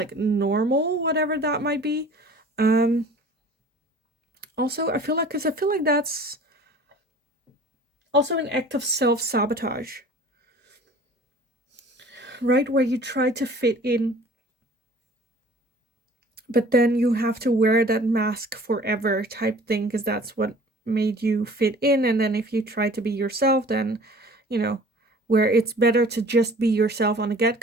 normal, whatever that might be. Also, I feel like that's also an act of self-sabotage. Right, where you try to fit in, but then you have to wear that mask forever type thing, because that's what made you fit in. And then if you try to be yourself, then, you know, where it's better to just be yourself on the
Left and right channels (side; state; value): both; normal; correlation 0.47